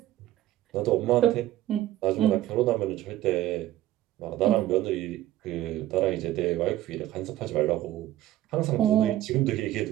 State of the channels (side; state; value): left; quieter; 14.3 dB